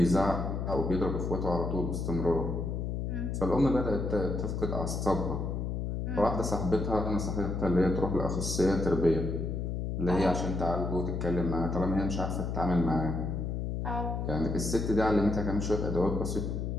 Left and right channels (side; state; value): left; noise; hum, 2 dB below the sound